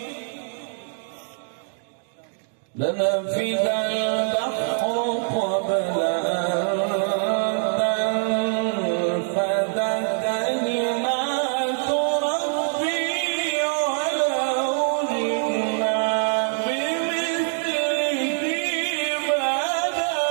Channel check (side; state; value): left; silent; digital silence